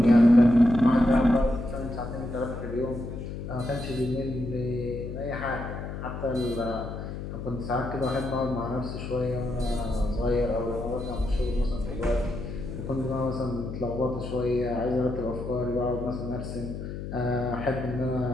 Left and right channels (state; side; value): noise; left; hum, 7 dB below the sound